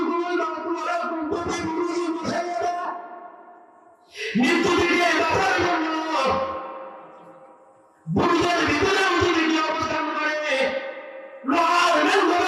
তোমার কুতুবে গুরুজি বসাইয়া মৃত্যু থেকে বাঁচার জন্য বুড়িদের ভিতরে যদি কি অবস্থান করে, লোহার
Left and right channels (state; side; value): identical; both; correlation 1.00